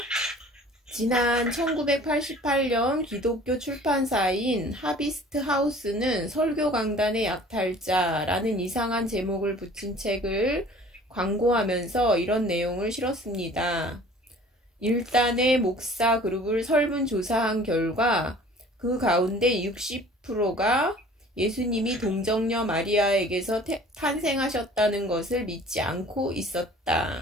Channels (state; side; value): normal; both; correlation 0.49